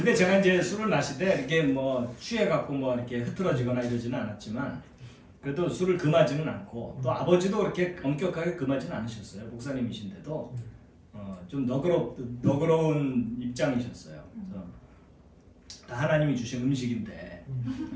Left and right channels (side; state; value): both; identical; correlation 1.00